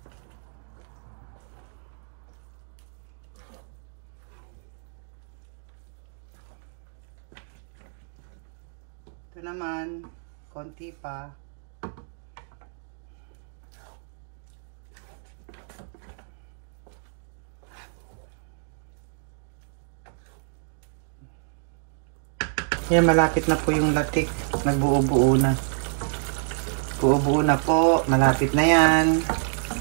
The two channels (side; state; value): left; silent; 59 dB below the other